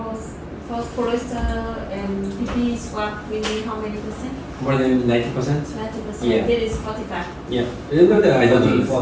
first polyester and PP swab we need how many percent? More than 90%. 90%. Yeah. This is 45. Yeah, I don't know that. I don't know.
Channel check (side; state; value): both; identical; correlation 1.00